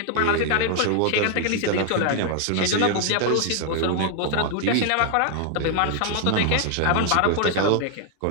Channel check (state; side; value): different; both; correlation 0.00